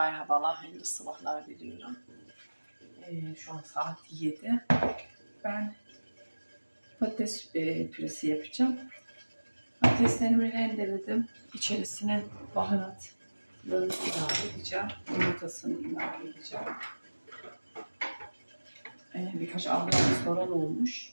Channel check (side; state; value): both; inverted; correlation -1.00